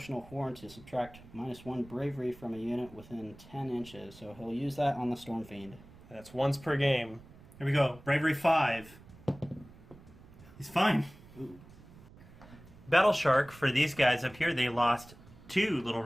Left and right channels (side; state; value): right; noise; rumble, 21 dB below the sound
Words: Horn to subtract -1 bravery from a unit within 10 inches. So he'll use that on the Storm Fiend. That's once per game. Here we go. Bravery 5. He's fine. Ooh. Battle Shark, for these guys up here, they lost 2 little